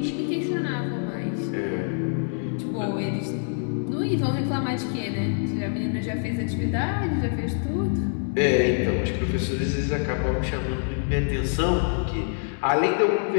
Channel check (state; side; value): silent; right; digital silence